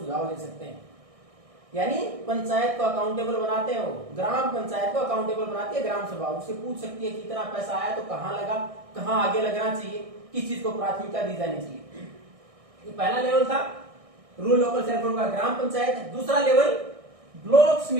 दे सकते हैं। यानी पंचायत को अकाउंटेबल बनाते हैं, वो ग्राम पंचायत को अकाउंटेबल बनाती है ग्राम सभा। उससे पूछ सकती है कि इतना पैसा आया तो कहां लगा, कहां आगे लगना चाहिए, किस चीज को प्राथमिकता दी जानी चाहिए। ये पहला लेवल था रूरल लोकल सेल्फ का ग्राम पंचायत। दूसरा लेवल ब्लॉक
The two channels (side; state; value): left; late; 1.6 ms